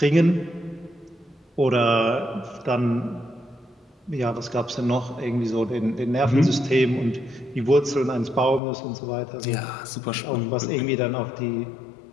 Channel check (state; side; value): drops out; right; at 8.6 s